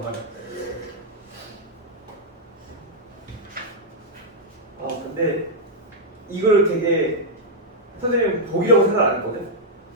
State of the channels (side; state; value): both; normal; correlation -0.04